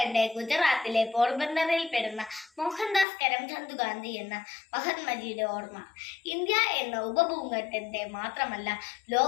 ഗുജറാത്തിലെ പോർബന്ദറിൽ പെടുന്ന മോഹൻദാസ് കരംചന്ദ് ഗാന്ധി എന്ന മഹാത്മജിയുടെ ഓർമ്മ ഇന്ത്യ എന്ന ഉപഭൂഖണ്ഡത്തെ മാത്രമല്ല,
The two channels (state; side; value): drops out; right; at 3.1 s